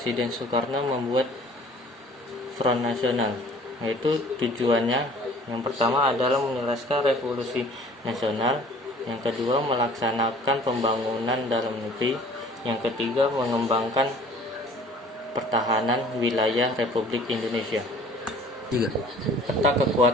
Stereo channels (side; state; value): both; normal; correlation 0.50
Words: Soekarno membuat Front Nasional, yaitu tujuannya yang pertama adalah menyelesaikan revolusi nasional, yang kedua melaksanakan pembangunan dalam negeri, yang ketiga mengembangkan pertahanan wilayah Republik Indonesia. 3. Peta